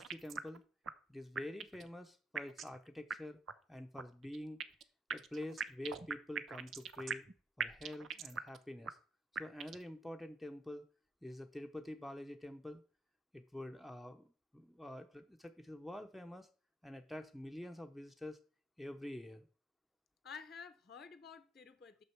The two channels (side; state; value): both; normal; correlation 0.79